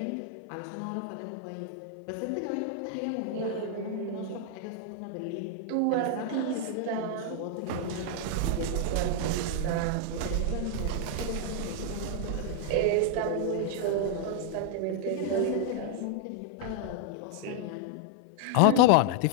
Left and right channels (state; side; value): different; both; correlation 0.00